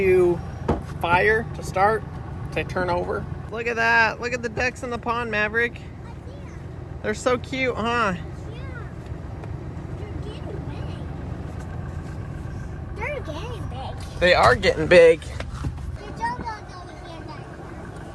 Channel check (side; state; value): both; identical; correlation 1.00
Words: fire, to start, to turn over. Look at that. Look at the ducks in the pond, Maverick. They're so cute, huh? Yeah. They're getting big. They are getting big. The John boat's over here